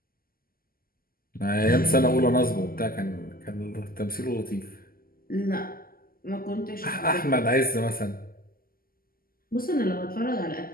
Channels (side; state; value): right; late; 0.42 ms